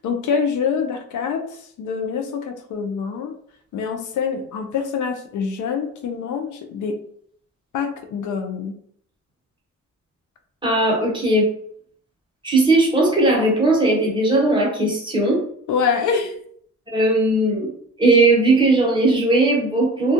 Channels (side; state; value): both; normal; correlation 0.35